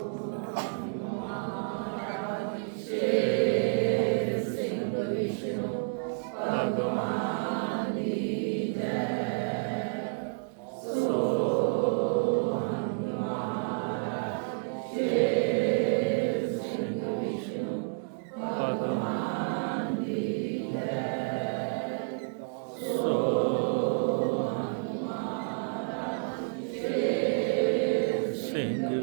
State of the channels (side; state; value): left; silent; digital silence